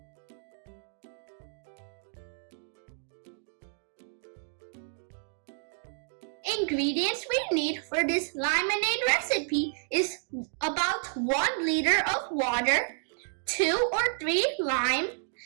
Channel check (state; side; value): silent; left; digital silence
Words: Ingredients we need for this lemonade recipe is about 1 liter of water, 2 or 3 lime,